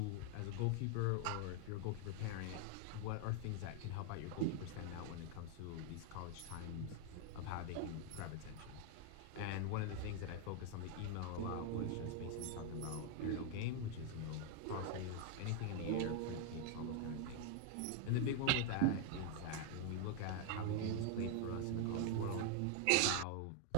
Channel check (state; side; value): different; both; correlation 0.00